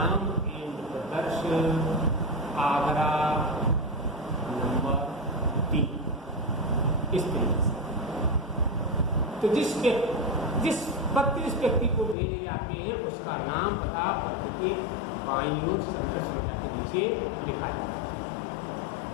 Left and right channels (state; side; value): drops out; right; at 12.2 s